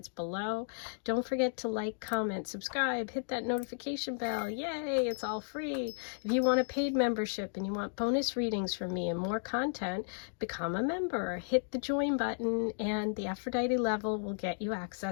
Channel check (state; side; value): silent; right; digital silence